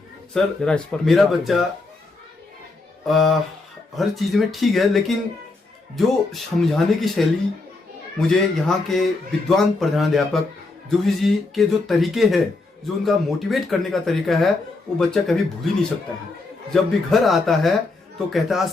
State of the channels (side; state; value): right; quieter; 3.4 dB